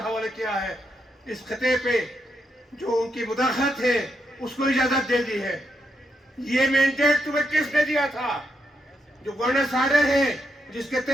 حوالے کیا ہے. اس خطے پہ جو ان کی مداخلت ہے اس کو اجازت دے دی ہے. یہ مینڈیٹ تمہیں کس نے دیا تھا؟ جو گورننس آرڈر ہے جس کے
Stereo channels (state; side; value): normal; both; correlation 0.81